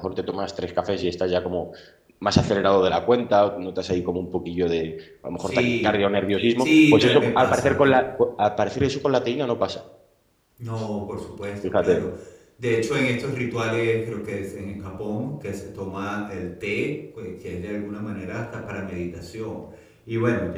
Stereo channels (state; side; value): identical; both; correlation 1.00